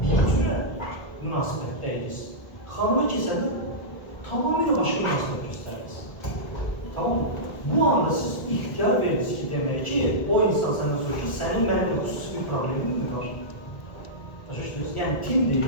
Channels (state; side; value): late; right; 1.5 ms